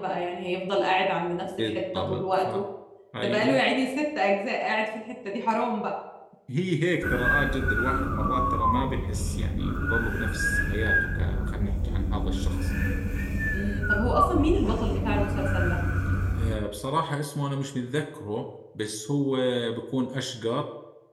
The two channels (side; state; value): both; identical; correlation 1.00